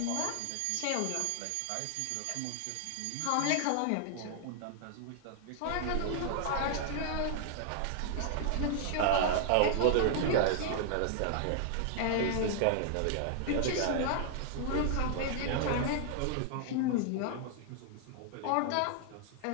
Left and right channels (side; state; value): both; different; correlation -0.01